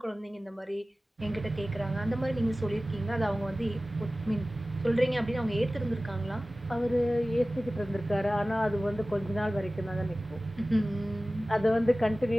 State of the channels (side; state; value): both; normal; correlation 0.97